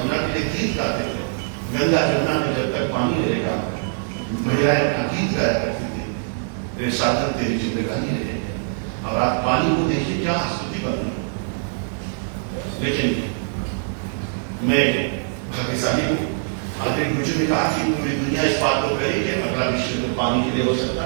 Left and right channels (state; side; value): silent; left; digital silence